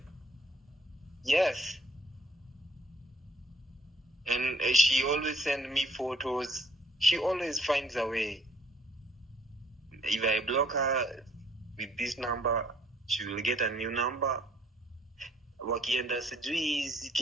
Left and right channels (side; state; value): both; normal; correlation 0.62